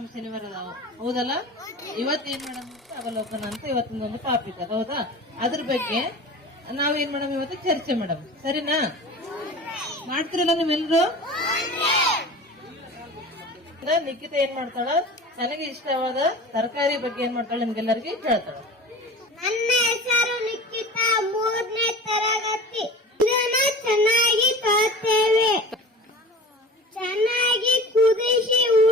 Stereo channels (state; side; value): normal; both; correlation 0.37